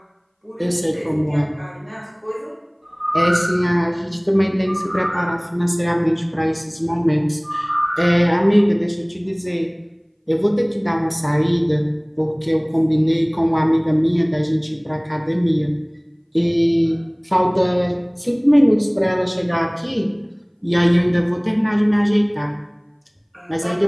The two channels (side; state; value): both; identical; correlation 1.00